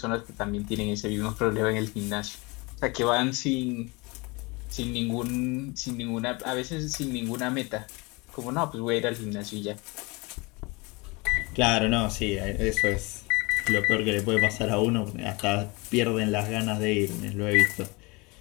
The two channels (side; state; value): right; quieter; 26.5 dB